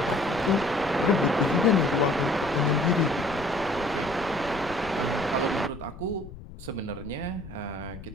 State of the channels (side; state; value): left; noise; rumble, 15 dB below the sound